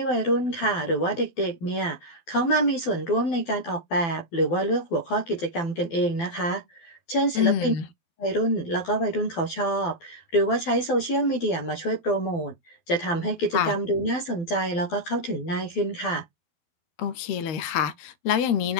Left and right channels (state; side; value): late; right; 12 ms